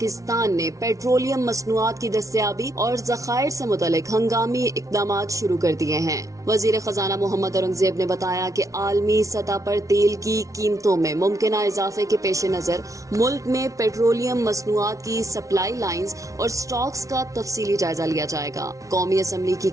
نے پیٹرولیم مصنوعات کی دستیابی اور ذخائر سے متعلق ہنگامی اقدامات شروع کر دیے ہیں۔ وزیر خزانہ محمد اورنگزیب نے بتایا کہ عالمی سطح پر تیل کی قیمتوں میں ممکنہ اضافے کے پیش نظر ملک میں پیٹرولیم مصنوعات کی سپلائی لائنز اور سٹاکس کا تفصیلی جائزہ لیا جائے گا۔ قومی اسمبلی کی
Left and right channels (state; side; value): late; left; 0.16 ms